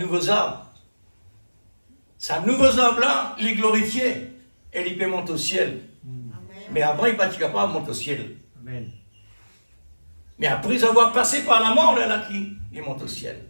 arbre. C'est un nouveau arbre là, il est glorifié. Et il peut monter au ciel. Mais après, il n'est pas capable de monter au ciel. Amen. Mais après avoir passé par la mort, là, il monte au ciel.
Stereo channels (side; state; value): both; inverted; correlation -1.00